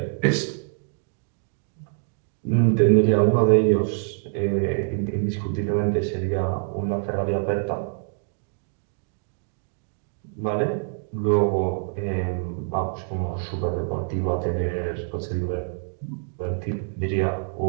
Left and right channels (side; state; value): left; silent; 61 dB below the other